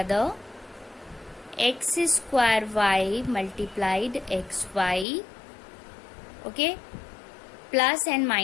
x square y multiplied xy. Okay, plus and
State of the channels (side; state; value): right; drops out; at 5.1 s